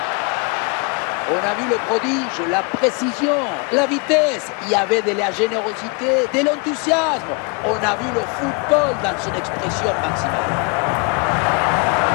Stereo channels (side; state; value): right; quieter; 32.5 dB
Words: On a vu le prodige, la précision, la vitesse. Il y avait de la générosité, de l'enthousiasme. On a vu le football dans son expression maximale.